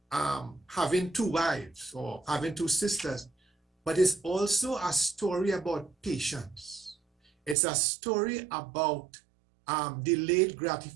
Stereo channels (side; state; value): left; drops out; at 7.6 s